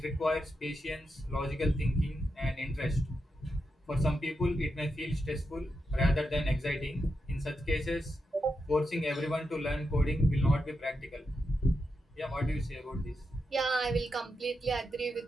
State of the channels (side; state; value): both; normal; correlation 0.86